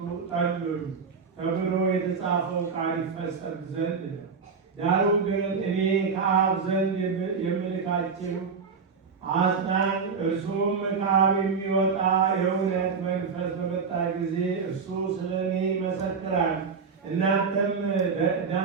ጠሉኝ ተብሎ የተጻፈው ቃል ይፈጸም ዘንድ ነው። ዳሩ ግን እኔ ከአብ ዘንድ የምልካችሁ አጽናኝ እርሱም ከአብ የሚወጣ የእውነት መንፈስ በመጣ ጊዜ እርሱ ስለ እኔ ይመሰክራል። እናንተም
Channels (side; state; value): left; quieter; 5.4 dB